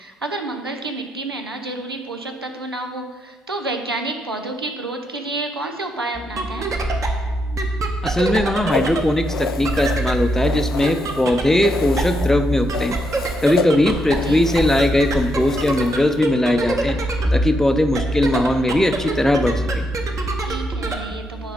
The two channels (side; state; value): both; normal; correlation 0.80